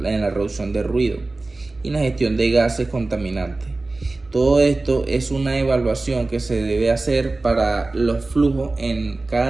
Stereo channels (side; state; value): left; quieter; 3.2 dB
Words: en la reducción de ruido y la gestión de gases contaminantes. Todo esto es una evaluación que se debe hacer para los flujos en